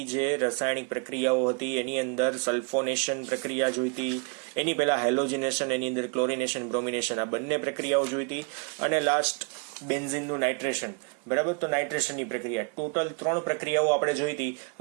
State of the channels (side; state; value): left; quieter; 35.8 dB